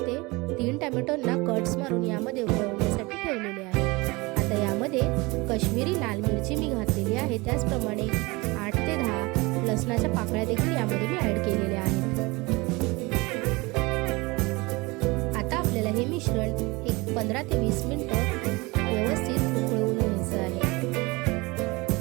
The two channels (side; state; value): left; quieter; 24.1 dB